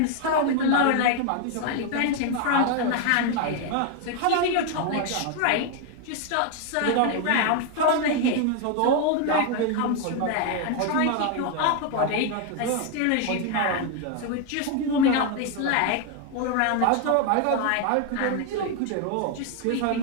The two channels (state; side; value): different; both; correlation 0.01